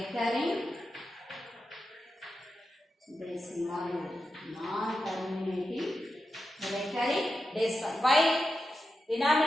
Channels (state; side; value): normal; both; correlation 0.89